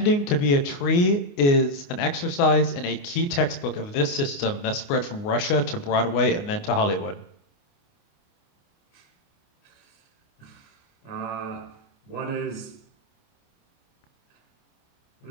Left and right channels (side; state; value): right; late; 29 ms